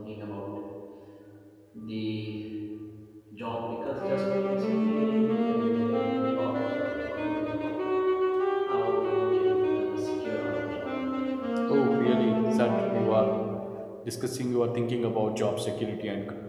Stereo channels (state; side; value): identical; both; correlation 1.00